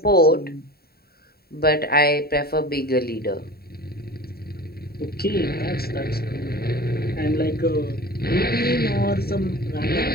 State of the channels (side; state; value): right; late; 0.45 ms